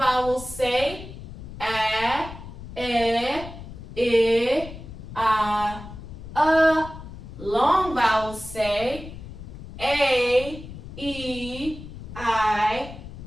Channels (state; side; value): noise; left; rumble, 13 dB below the sound